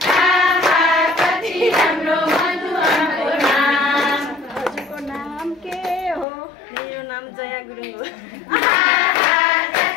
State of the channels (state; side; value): drops out; right; at 6.2 s